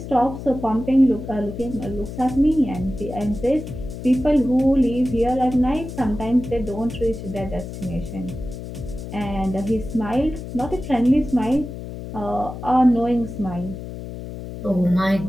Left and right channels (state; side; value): noise; left; hum, 10 dB below the sound